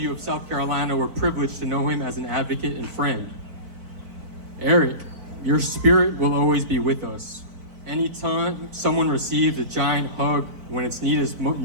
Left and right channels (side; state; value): left; late; 4.5 ms